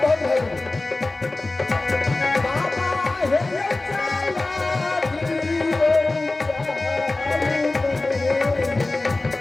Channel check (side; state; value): right; quieter; 3.1 dB